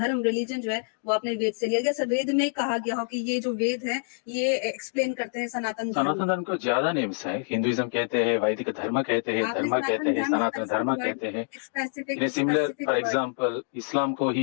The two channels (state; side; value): silent; right; digital silence